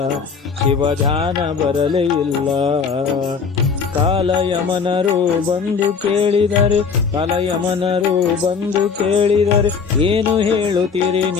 ಶಿವ ಧ್ಯಾನ ಬರಲೇ ಇಲ್ಲ. ಕಾಲಯಮನರು ಬಂದು ಕೇಳಿದರೆ, ಕಾಲಯಮನರು ಬಂದು ಕೇಳಿದರೆ, ಏನು ಹೇಳುತ್ತೀರಿ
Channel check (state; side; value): quieter; right; 5.6 dB